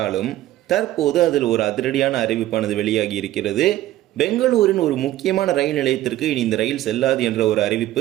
தற்போது அதில் ஒரு அதிரடியான அறிவிப்பானது வெளியாகி இருக்கிறது. பெங்களூரின் ஒரு முக்கியமான ரயில் நிலையத்திற்கு இனி இந்த ரயில் செல்லாது என்ற ஒரு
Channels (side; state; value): left; quieter; 14.5 dB